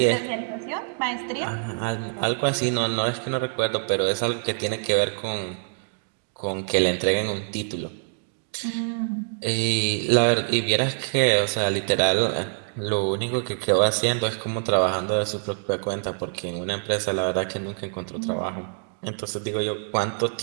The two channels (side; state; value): left; silent; digital silence